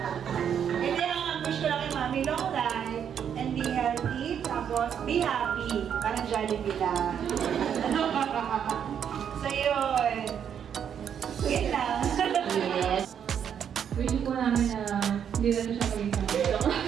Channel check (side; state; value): left; quieter; 8.4 dB